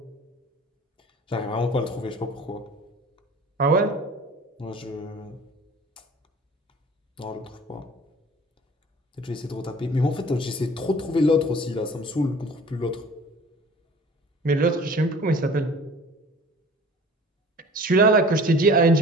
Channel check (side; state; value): both; normal; correlation 0.46